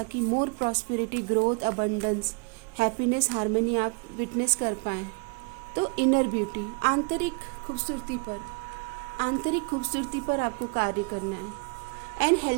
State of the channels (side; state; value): left; quieter; 33.5 dB